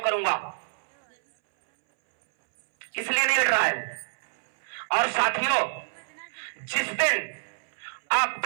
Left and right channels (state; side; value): silent; left; 60 dB below the other